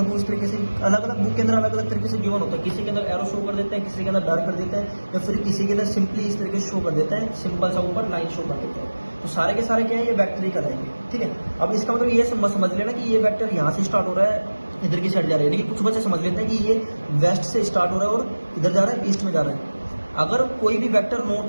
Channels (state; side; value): inverted; both; correlation -1.00